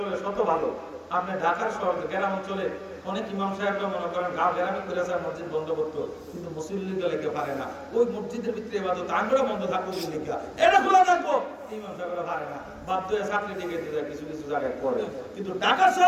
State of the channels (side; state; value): both; identical; correlation 1.00